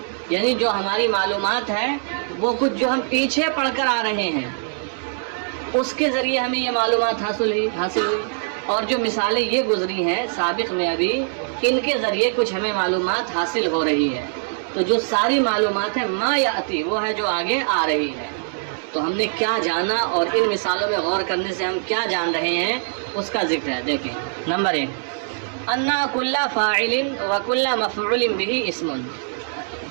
یعنی جو ہماری معلومات ہے وہ کچھ جو ہم پیچھے پڑھ کر آ رہے ہیں اس کے ذریعے ہمیں یہ معلومات حاصل ہوئی. اور جو مثالیں یہ گزری ہیں سابق میں ابھی ان کے ذریعے کچھ ہمیں معلومات حاصل ہو رہی ہے. تو جو ساری معلومات ہے ما یاتی وہ ہے جو آگے آ رہی ہے. تو ہم نے کیا جانا اور ان مثالوں میں غور کرنے سے ہم کیا جان رہے ہیں اس کا ذکر ہے. دیکھیں نمبر 1 انا کل فاعل و کل مفعول به اسم.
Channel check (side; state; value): left; silent; digital silence